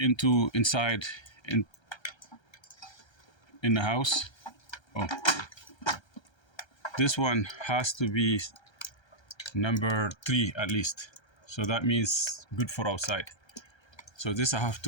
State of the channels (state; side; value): late; right; 1.3 ms